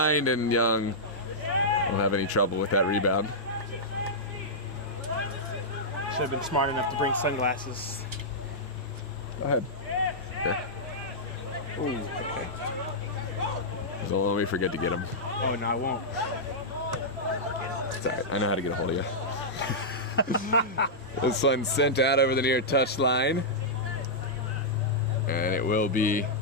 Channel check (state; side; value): normal; both; correlation -0.10